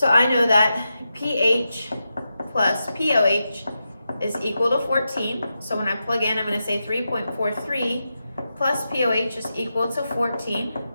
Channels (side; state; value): both; inverted; correlation -0.88